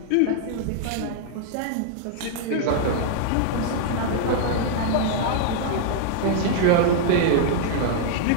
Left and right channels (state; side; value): different; both; correlation 0.00